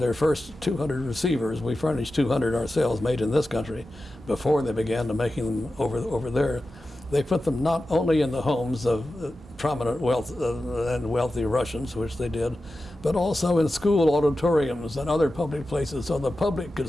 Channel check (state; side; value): normal; both; correlation 0.93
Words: first 200 receivers. We furnished 200 ourselves, made in this country, before they began to making them over there. They put them not only in the homes of prominent and wealthy Russians, which they did, but also in school auditoriums and other public places, so the public could